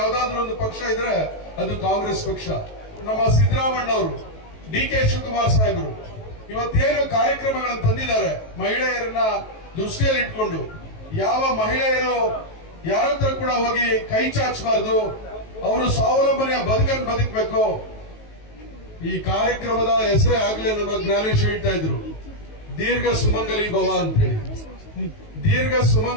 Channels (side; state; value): right; late; 19 ms